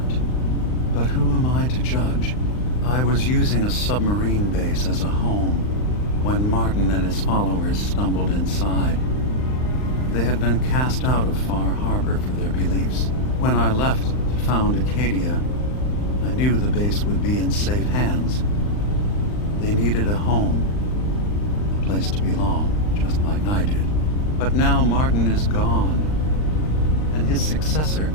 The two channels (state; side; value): late; right; 39 ms